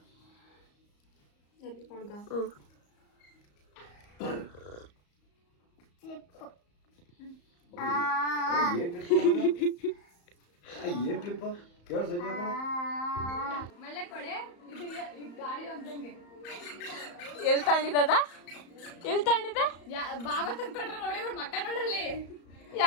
ಕ್ಲಿಪ್ ಏನ್ ಕ್ಲಿಪ್ ಕೇಳ ಸಂಜೆ ಎಲ್ಲಿ ತಗೊಂಡಿದ್ದದ? ಎಲ್ಲಿ ತಗೊಂಡಿದ್ದ? ಬಾಬಾ ತಂದ್ಕೊಟ್ರೆ ನೋಡಿ ಅವ್ರ ಮಕ್ಕ ನೋಡಲ್ಲಿ.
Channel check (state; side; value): late; right; 34 ms